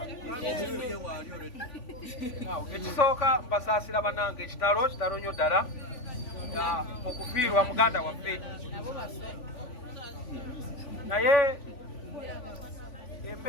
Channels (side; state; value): right; late; 3.5 ms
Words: ekisooka mbasaasira bannange ekitalo nnyo ddala okufiirwa muganda waffe, naye